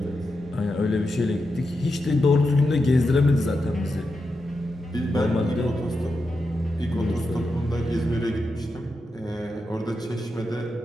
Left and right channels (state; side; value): normal; both; correlation 0.87